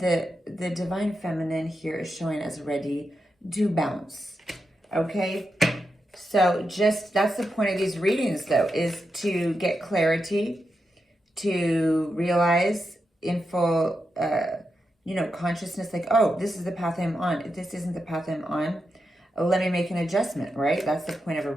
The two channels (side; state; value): both; normal; correlation 0.87